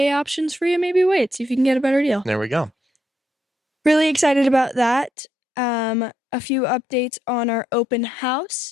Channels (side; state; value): right; drops out; at 5.1 s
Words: options for you, maybe wait. See if you can get a better deal. There we go. Really excited about that. A few updates on our open